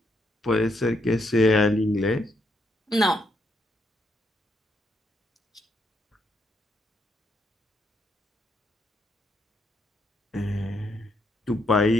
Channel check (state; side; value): normal; both; correlation 0.76